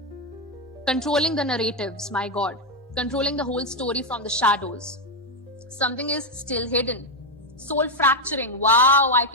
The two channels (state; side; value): normal; both; correlation 0.05